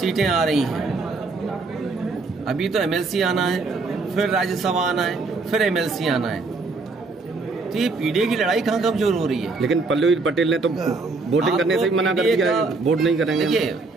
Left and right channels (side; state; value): left; quieter; 3.8 dB